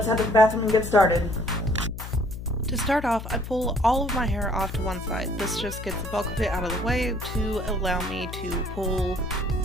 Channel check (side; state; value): left; noise; hum, 9 dB below the sound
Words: head to the bathroom and get started. To start off, I pull all of my hair off to one side. This just gets the bulk of it out of the way to allow me to pull